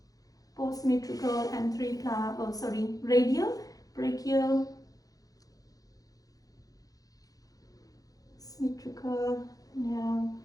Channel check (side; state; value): right; late; 0.17 ms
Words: postmetrical and radial, brachial, metrical, now